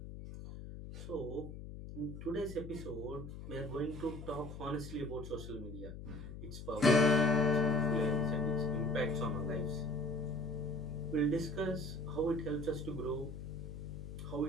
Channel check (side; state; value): left; noise; hum, 10 dB below the sound